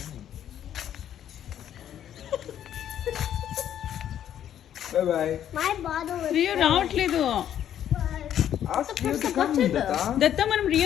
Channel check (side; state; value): right; quieter; 10.4 dB